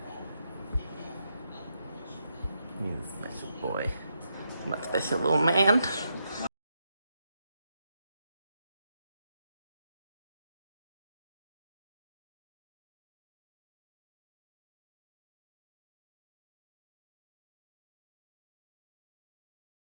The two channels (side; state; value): both; inverted; correlation -0.82